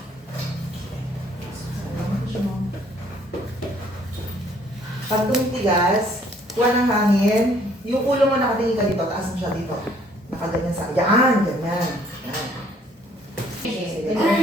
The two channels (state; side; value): normal; both; correlation 0.62